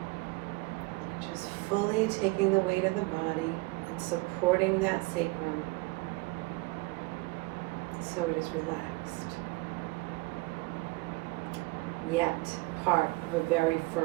just fully taking the weight of the body and supporting that sacrum so it is relaxed, yet part of a very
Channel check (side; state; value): left; quieter; 23.9 dB